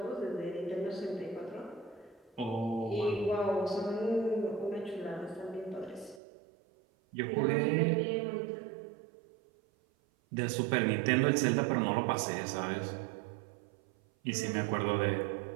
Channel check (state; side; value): drops out; left; at 6.2 s